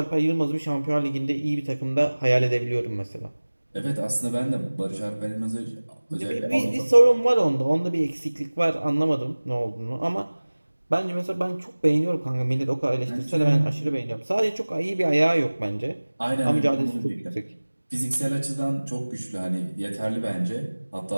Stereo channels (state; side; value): inverted; both; correlation -1.00